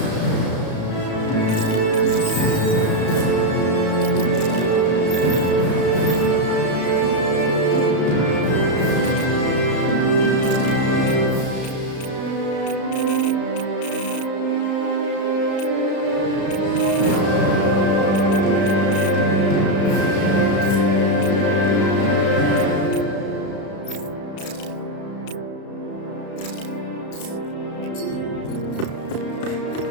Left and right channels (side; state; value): right; late; 33 ms